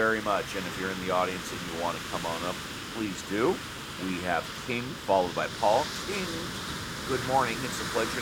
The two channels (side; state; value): both; identical; correlation 1.00